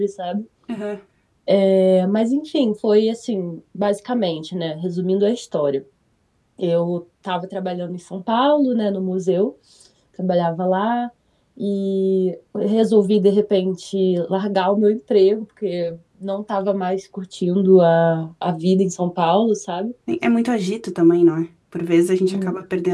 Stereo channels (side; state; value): both; identical; correlation 1.00